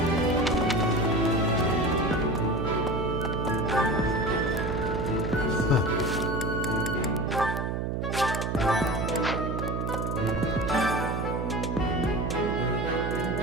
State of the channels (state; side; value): noise; right; hum, 1 dB below the sound